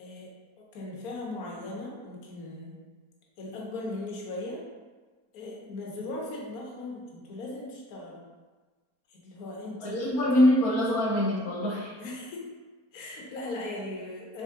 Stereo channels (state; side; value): late; right; 4.3 ms